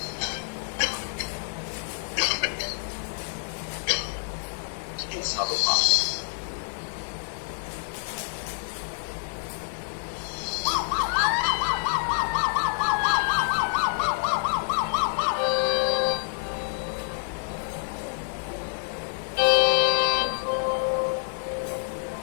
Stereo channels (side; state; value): right; silent; digital silence